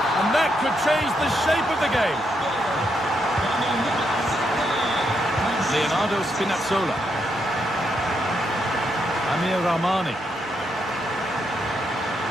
And that could change the shape of the game. Leonardo Spinazzola. Amir Rahmani.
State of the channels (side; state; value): both; normal; correlation 0.79